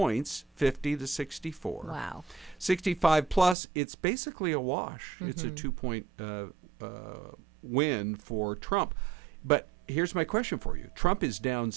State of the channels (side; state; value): left; drops out; at 3.6 s